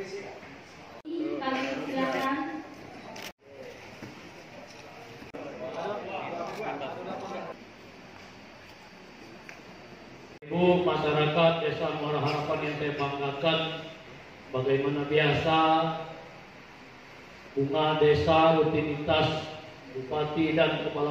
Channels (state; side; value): identical; both; correlation 1.00